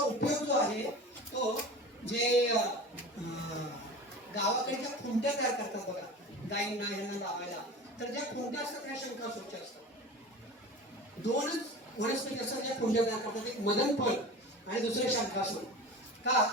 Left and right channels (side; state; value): both; normal; correlation 0.34